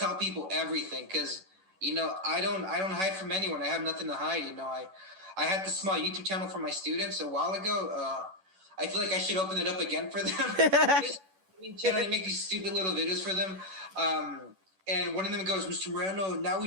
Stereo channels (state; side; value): late; left; 11 ms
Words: people everything because, I don't hide from anyone. I have nothing to hide. I had this small YouTube channel for my students a while ago. I feel like I should open it up again for them. I make these stupid little videos for them. And one of them goes, Mr. Moreno, now